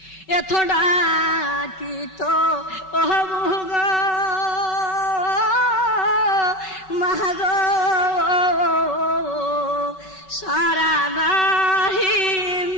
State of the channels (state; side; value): late; right; 5.3 ms